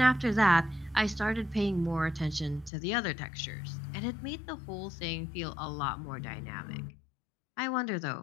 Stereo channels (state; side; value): drops out; right; at 2.7 s